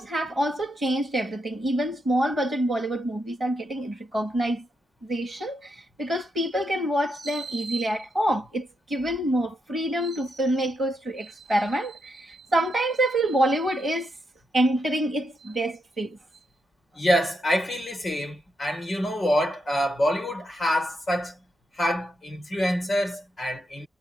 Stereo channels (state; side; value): normal; both; correlation 0.82